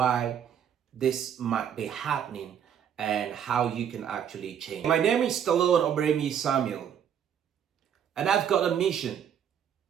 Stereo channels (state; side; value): quieter; left; 8.8 dB